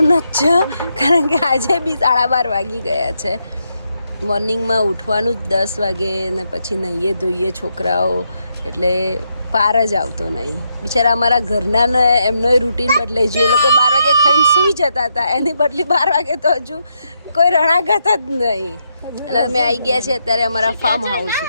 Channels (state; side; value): inverted; both; correlation -0.80